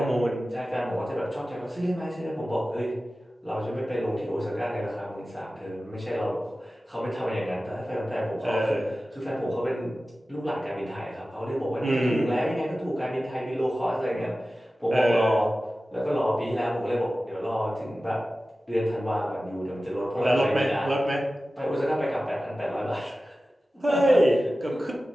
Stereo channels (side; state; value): both; normal; correlation 0.95